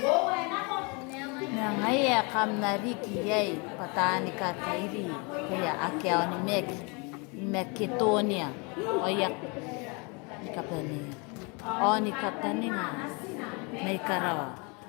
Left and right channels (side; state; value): right; quieter; 31.3 dB